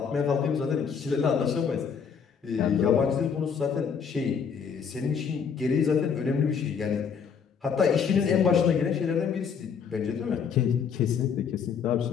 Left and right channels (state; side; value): quieter; right; 6.6 dB